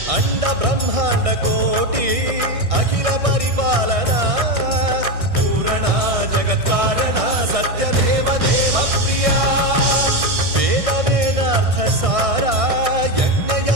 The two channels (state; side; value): late; left; 1.6 ms